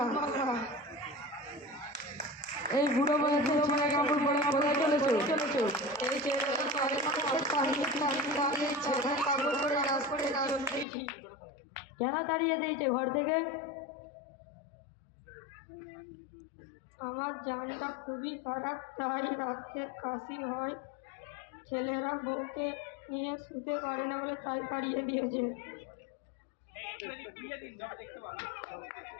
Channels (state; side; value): drops out; right; at 10.9 s